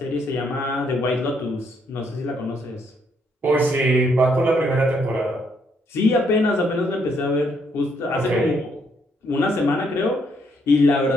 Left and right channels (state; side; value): normal; both; correlation 0.72